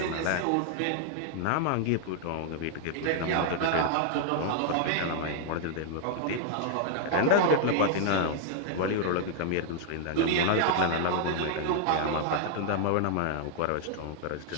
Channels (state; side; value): different; both; correlation 0.00